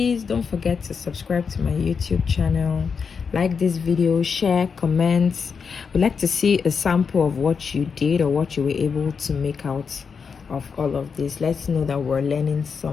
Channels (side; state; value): right; quieter; 5.9 dB